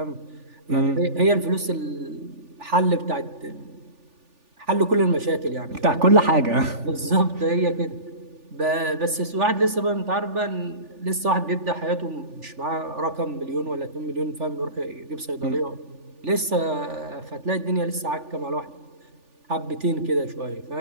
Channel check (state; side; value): late; left; 3.4 ms